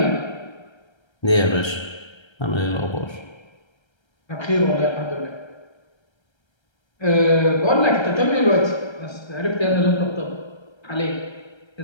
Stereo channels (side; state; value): right; late; 1.3 ms